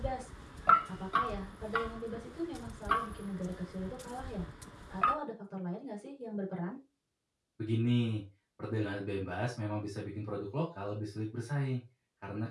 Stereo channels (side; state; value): both; identical; correlation 1.00